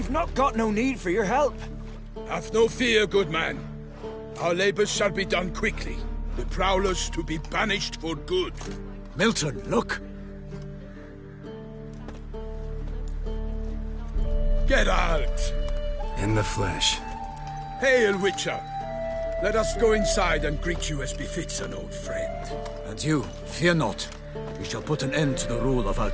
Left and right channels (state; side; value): identical; both; correlation 1.00